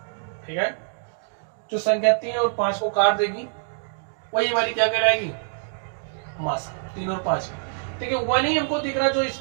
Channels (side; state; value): left; silent; digital silence